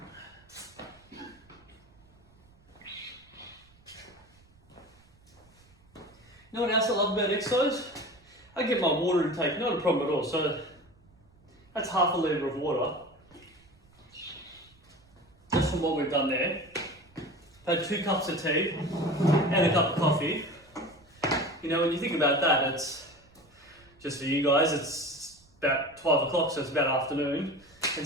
know what else I love about exercise? I get my water intake, not a problem at all. So that's half a litre of water. Just from what we've done there. I've had 2 cups of tea and a cup of coffee. You know, when you think about that, it's just for you guys, it's about 12 o'clock, so it's about afternoon.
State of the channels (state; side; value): noise; right; rumble, 29 dB below the sound